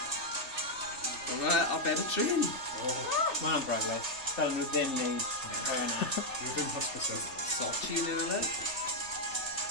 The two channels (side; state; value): right; late; 3.3 ms